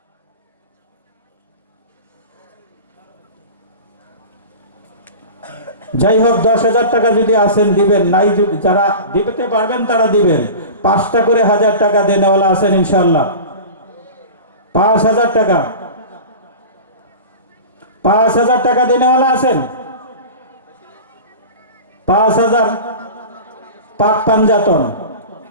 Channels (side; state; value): both; inverted; correlation -0.33